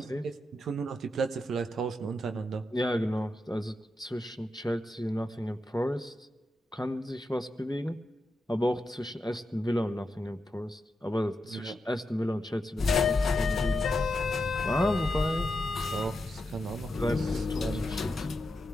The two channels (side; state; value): both; normal; correlation 0.87